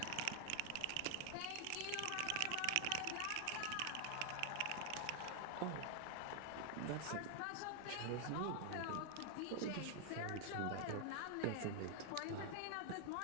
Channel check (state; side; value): different; both; correlation 0.00